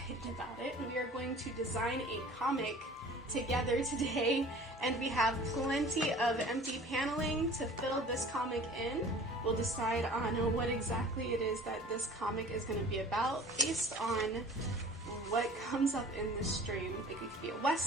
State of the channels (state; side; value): normal; both; correlation 0.45